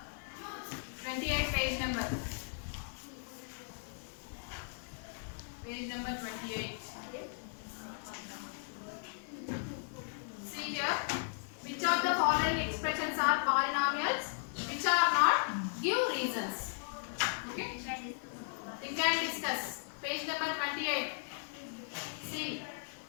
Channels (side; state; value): right; silent; digital silence